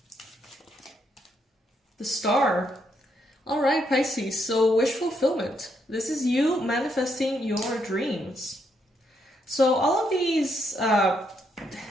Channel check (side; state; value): both; normal; correlation 0.76